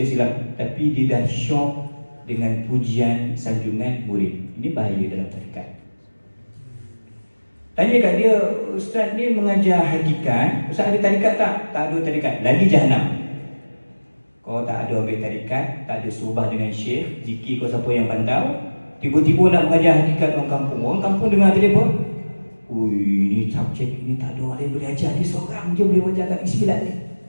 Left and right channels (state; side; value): inverted; both; correlation -1.00